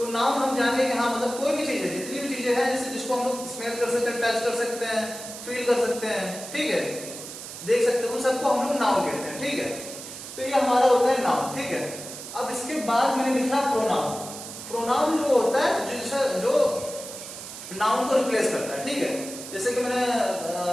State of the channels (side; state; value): right; noise; hiss, 11 dB below the sound